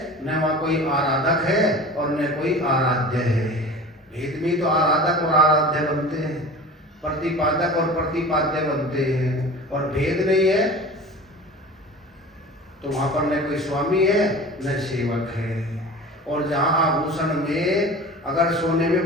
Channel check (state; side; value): normal; both; correlation 0.37